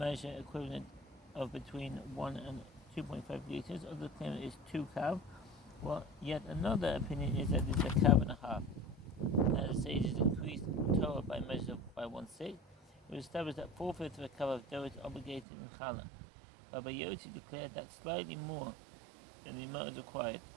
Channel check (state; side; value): drops out; left; at 15.5 s